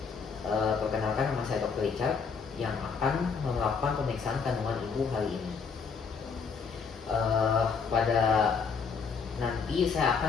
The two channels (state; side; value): quieter; right; 5.6 dB